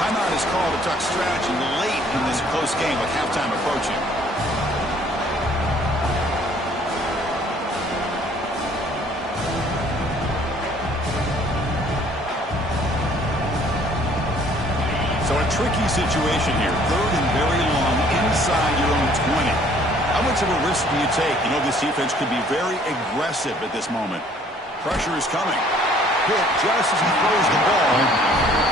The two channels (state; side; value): normal; both; correlation 0.58